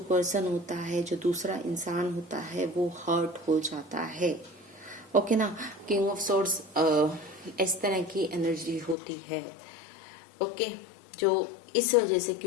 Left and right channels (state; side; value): drops out; right; at 9.0 s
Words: पर्सन होता है, जो दूसरा इंसान होता है, वो हर्ट हो जाता है। ओके ना, किंग ऑफ सॉर्ड्स इस तरह की एनर्जी होती है। ओके, जो इस वजह से,